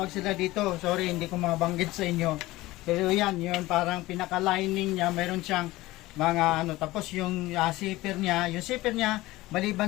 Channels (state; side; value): quieter; right; 18.5 dB